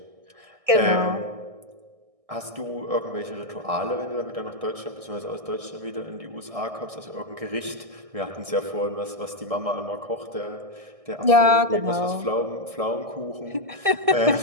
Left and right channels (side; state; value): left; late; 1.6 ms